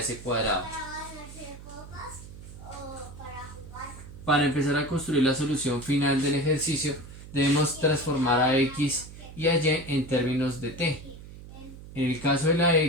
cuadrado. Para empezar a construir la solución final del ejercicio debemos transformar a x y a y en términos de t. En el caso de la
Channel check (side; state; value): right; noise; hum, 15 dB below the sound